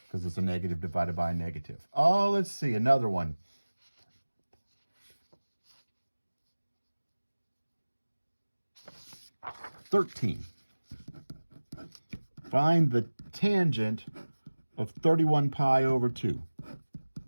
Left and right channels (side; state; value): both; inverted; correlation -1.00